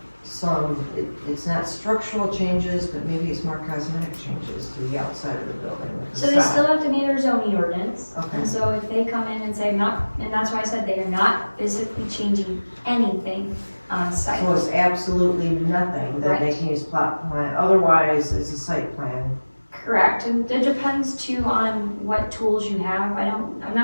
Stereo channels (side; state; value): both; inverted; correlation -1.00